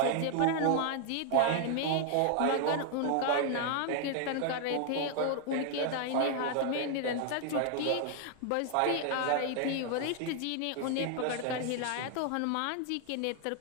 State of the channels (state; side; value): different; both; correlation 0.00